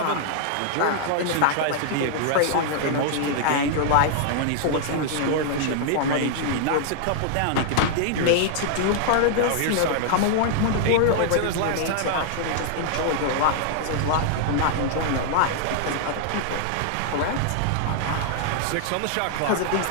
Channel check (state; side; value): different; both; correlation -0.01